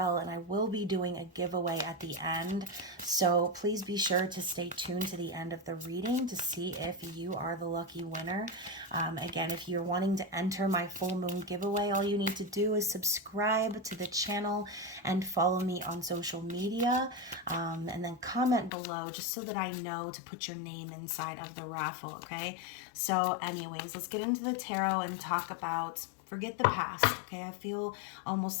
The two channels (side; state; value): right; drops out; at 18.7 s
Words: and I will be doing a giveaway at the end. So please be sure to stay tuned to the end of the reading to see if you are the lucky winner. Again, if you're wanting to enter my full moon giveaway, all you need to do is subscribe to the channel and follow me on social media, and then comment below just so that I know to put your name inside of the raffle, okay? So anyways, let's get into the tarot and talk about forget the past, okay? I feel